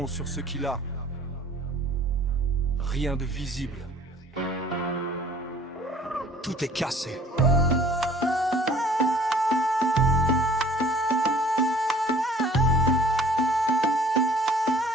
sur ce qu'il a. Rien de visible. Tout est cassé.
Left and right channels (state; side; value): normal; both; correlation 0.51